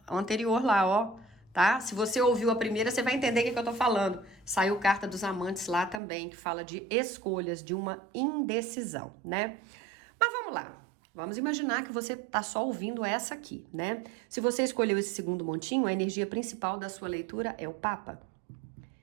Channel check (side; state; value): left; drops out; at 6.0 s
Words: anterior lá, ó, tá? Se você ouviu a primeira, você vai entender o que eu tô falando. Saiu carta dos amantes lá também, que fala de escolhas, de uma indecisão, né? Mas vamos lá. Vamos imaginar que você tá só ouvindo essa aqui, né? Se você escolheu esse segundo montinho, a energia principal da sua leitura é o Papa.